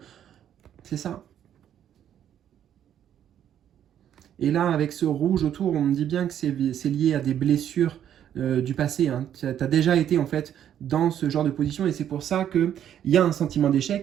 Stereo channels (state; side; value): quieter; left; 10.1 dB